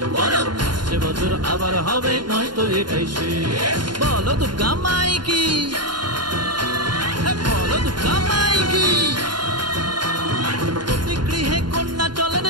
বলো আসছে বছর আবার হবে, নয়তো এটাই শেষ। বলো দুর্গা মাই কি, বলো দুর্গা মাই কি। প্রতি গৃহে কন্যা চলেন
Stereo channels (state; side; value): late; left; 0.71 ms